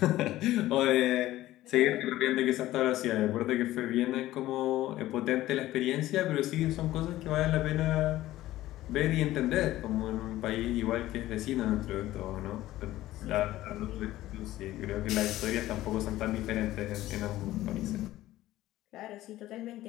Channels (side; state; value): right; quieter; 15.4 dB